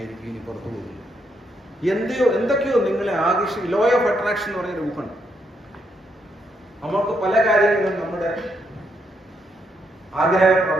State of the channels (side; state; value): both; normal; correlation 0.77